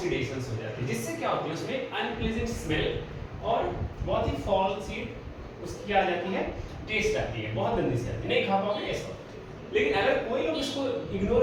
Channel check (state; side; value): identical; both; correlation 1.00